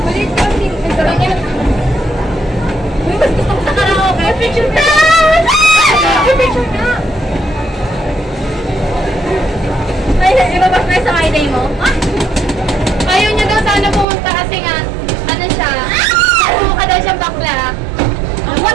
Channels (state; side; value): drops out; left; at 14.1 s